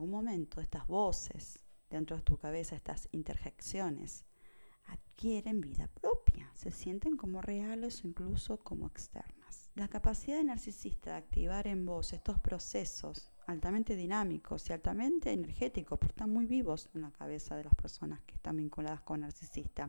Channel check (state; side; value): inverted; both; correlation -1.00